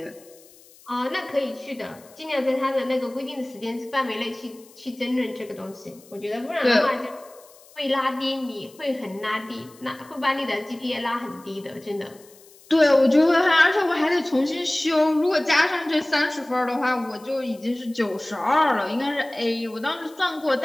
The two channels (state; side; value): noise; left; hiss, 25 dB below the sound